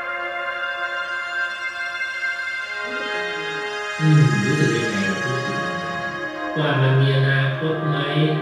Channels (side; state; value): both; identical; correlation 1.00